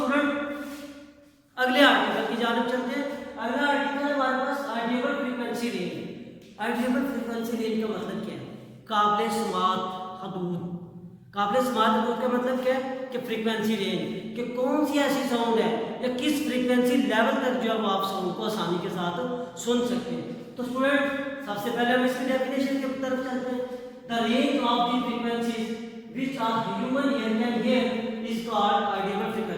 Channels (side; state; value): both; identical; correlation 1.00